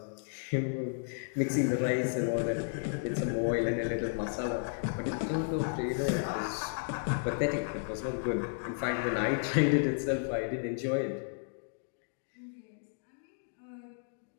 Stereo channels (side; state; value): right; silent; digital silence